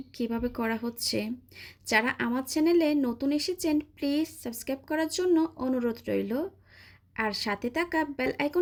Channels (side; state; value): both; identical; correlation 1.00